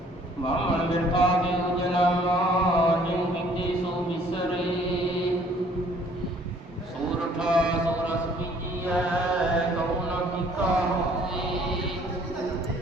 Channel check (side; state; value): both; normal; correlation 0.58